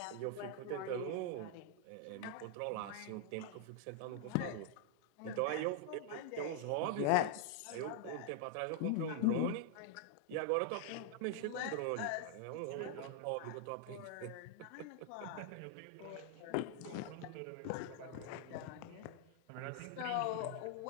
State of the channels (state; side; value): different; both; correlation 0.00